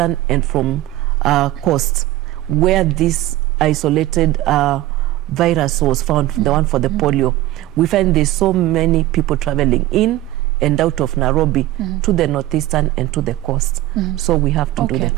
and from coast, where this isolated virus was found, the one for the polio, we find there's so many people traveling in and out of Nairobi to the northeastern and to the coast. So we have to do the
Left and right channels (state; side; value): quieter; left; 15.9 dB